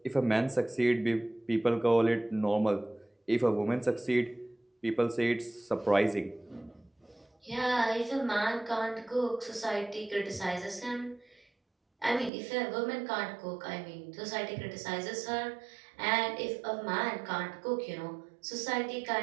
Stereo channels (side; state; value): left; drops out; at 12.3 s